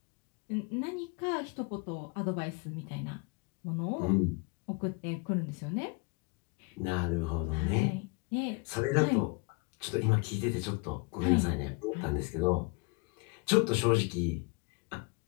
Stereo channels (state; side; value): quieter; right; 28.5 dB